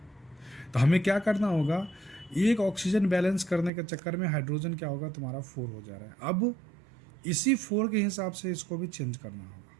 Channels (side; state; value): left; drops out; at 3.7 s